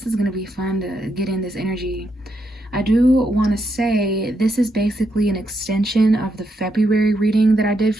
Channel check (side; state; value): both; normal; correlation 0.80